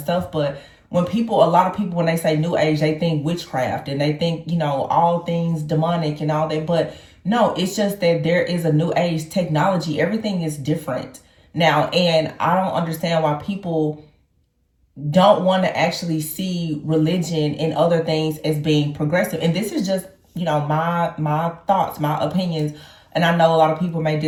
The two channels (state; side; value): identical; both; correlation 1.00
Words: but a lot of people, when they say new age, they think witchcraft and they think, all things demonic and all that. But no, it's just that there is a new age technology. Everything is different now. And I don't understand why people don't want to actually see religion and other things as being progressive. And this is just, my thoughts, my opinions. And I know a lot of people may